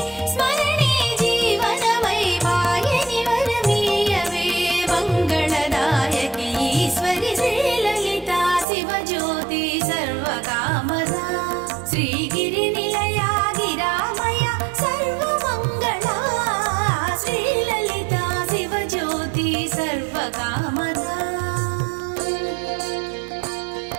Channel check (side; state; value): left; drops out; at 8.7 s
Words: స్మరణే జీవనమై వాయని వరమీయవే మంగళదాయకి ఈశ్వరి శ్రీలలితా శివజ్యోతి సర్వకామదా శ్రీగిరినిలయా గిరామయ సర్వమంగళా శ్రీలలితా శివజ్యోతి సర్వకామదా